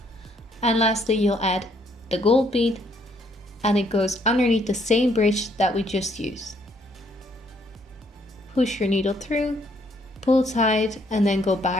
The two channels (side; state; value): both; normal; correlation 0.68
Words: And lastly, you'll add the gold bead, and it goes underneath the same bridge that we just used. Push your needle through, pull tight, and then go